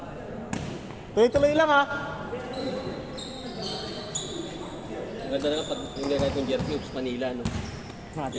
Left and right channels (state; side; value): identical; both; correlation 1.00